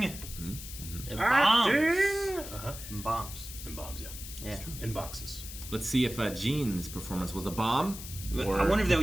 And bombs. And bombs. And bombs, yeah. Yeah. In boxes. Let's see if Gene's performance was a bomb. Or I wonder if they'll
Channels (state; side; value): noise; left; hiss, 11 dB below the sound